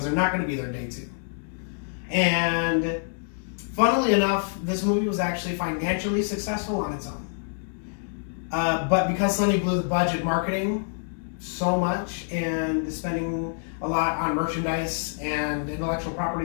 they're not going to be there day two. And funnily enough, this movie was actually financially successful on its own. But because Sony blew the budget marketing so much and spending a lot on merchandise and intellectual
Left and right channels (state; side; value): silent; right; digital silence